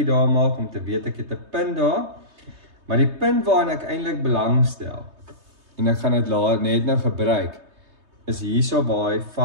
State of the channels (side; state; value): left; late; 3.2 ms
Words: daar maak om te weet ek het 'n punt daar, maar die punt waarin ek eintlik belangstel, en ek gaan dit net nou gebruik, is hierso waar hy